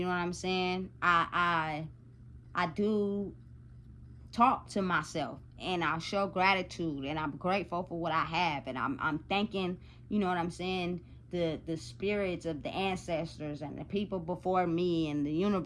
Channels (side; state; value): both; identical; correlation 1.00